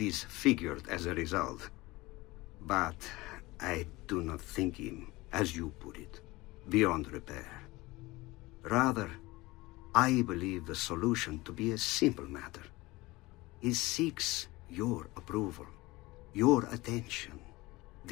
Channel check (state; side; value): quieter; right; 20.8 dB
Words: as a result. But I do not think him, as you put it, beyond repair. Rather, I believe the solution to be a simple matter. He seeks your approval, your attention.